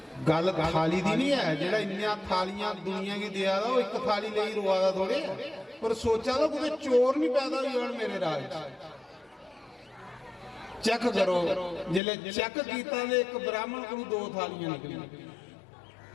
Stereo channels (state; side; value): drops out; right; at 12.0 s